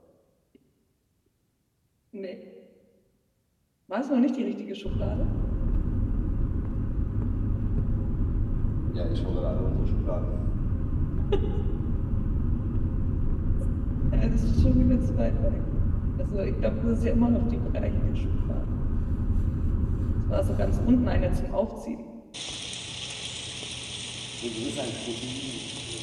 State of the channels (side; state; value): both; identical; correlation 1.00